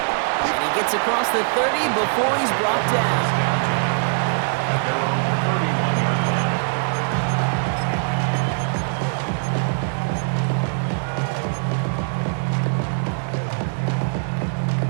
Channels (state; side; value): silent; left; digital silence